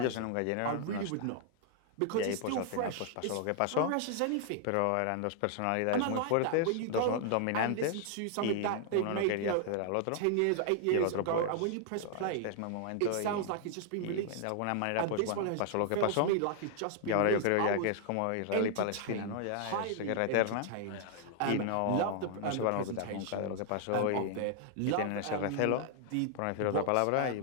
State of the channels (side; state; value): both; different; correlation 0.00